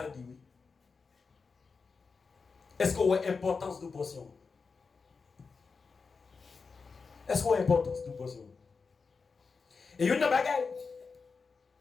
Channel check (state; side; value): quieter; right; 4.8 dB